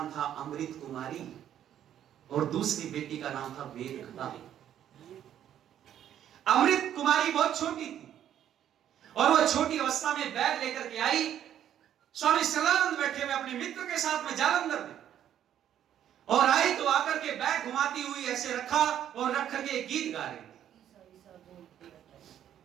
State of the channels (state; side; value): quieter; left; 10.5 dB